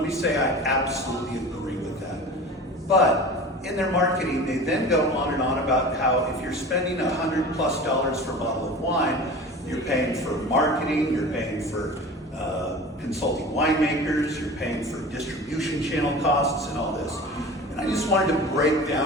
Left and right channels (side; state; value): both; normal; correlation 0.36